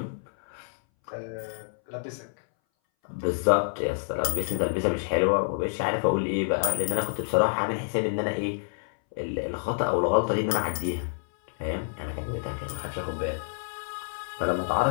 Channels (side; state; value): right; silent; 59 dB below the other